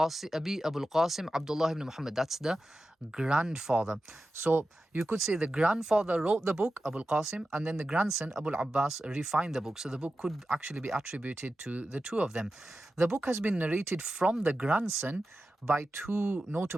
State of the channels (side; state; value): both; normal; correlation 0.92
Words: Abdullah ibn Muhammad, that's the grandfather. So you could say the grandfather wrote the book, Abu al-Qasim, and then the grandson, Abu al-Abbas, refined the book. So the book could actually be attributed to the two of them. The book has been narrated from the grandson by two